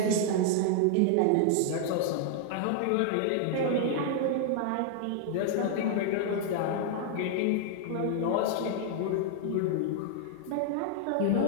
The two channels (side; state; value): both; different; correlation -0.01